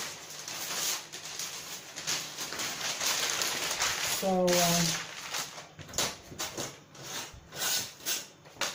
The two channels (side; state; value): both; identical; correlation 1.00